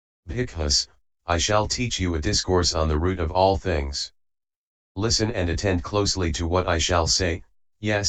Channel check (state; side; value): identical; both; correlation 1.00